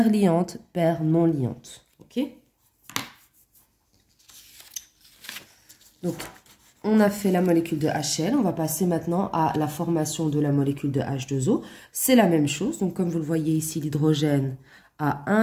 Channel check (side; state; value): both; identical; correlation 1.00